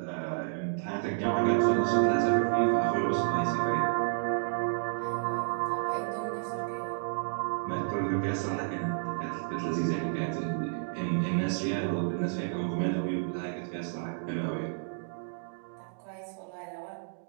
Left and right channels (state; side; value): silent; left; digital silence